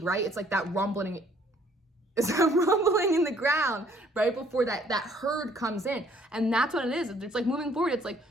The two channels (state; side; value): normal; both; correlation 0.61